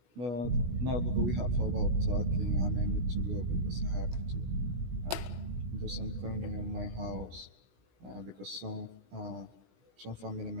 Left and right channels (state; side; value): late; left; 16 ms